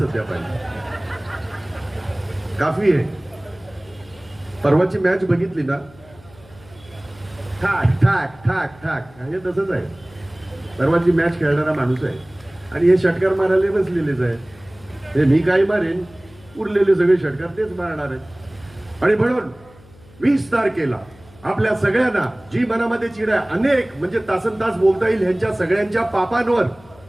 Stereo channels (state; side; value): noise; left; hum, 25 dB below the sound